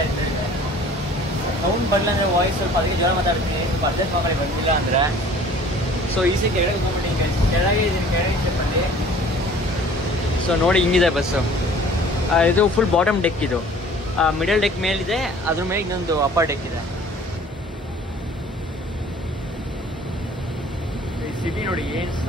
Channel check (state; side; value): normal; both; correlation 0.50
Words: ಇರ್ತಾರೆ. ಸೌಂಡ್ ಬರಲ್ಲ ಅಂದರೆ ವಾಯ್ಸ್ ಸ್ವಲ್ಪ ಅದಕ್ಕೆ ಜ್ವರ ಮಾತಾಡ್ತೀನಿ, ಸ್ವಲ್ಪ ಅಡ್ಜಸ್ಟ್ ಮಾಡಿ ಬಂದಿಲ್ಲ ಅಂದರೆ. ಸೊ ಈಸಿ ಕೆಳಗೆ ಹೋಗ್ಬಿಟ್ಟು ಕೆಳಗೆ ಇದ್ದೀನಿ, ಕೆಳಗೆ ಸ್ಟೆಪ್ಪಲ್ಲಿ. ಸೊ ನೋಡಿ ಹಿಂಗಿದೆ ಬಸ್ಸು. ಇದು ಫುಲ್ ಬಾಟಮ್ ಡೆಕ್, ಇದು ಮಿಡಲ್ ಡೆಕ್ ಮೇಲಿದೆ, ಅದ್ರ ಮೇಲೆ ಇನ್ನೊಂದು ಅಪ್ಪರ್ ಡೆಕ್ ಇದೆ. ಸಿಟಿ ನೋಡಿ ಏನು